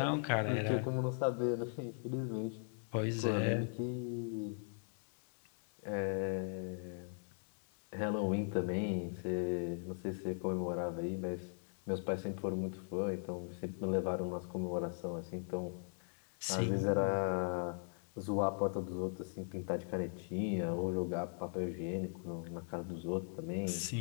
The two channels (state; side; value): silent; right; 52 dB below the other